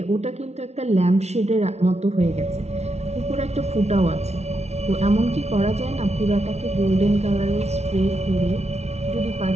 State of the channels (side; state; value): left; late; 0.31 ms